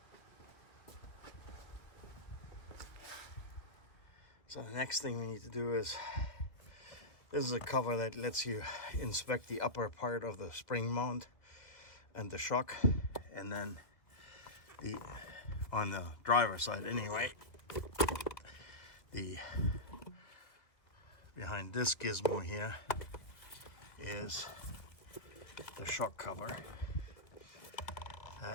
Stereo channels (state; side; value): late; right; 2.1 ms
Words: So the next thing we need to do is, this is a cover that lets you inspect the upper part of the spring mount and the shock, and then on the driver's side anyway, behind this gizmo here is the shock cover